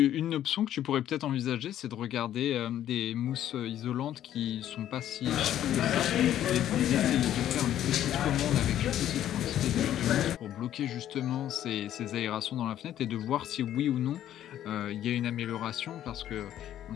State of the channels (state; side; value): quieter; right; 11.6 dB